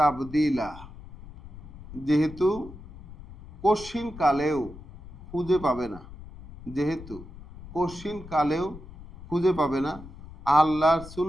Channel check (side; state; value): left; noise; rumble, 16 dB below the sound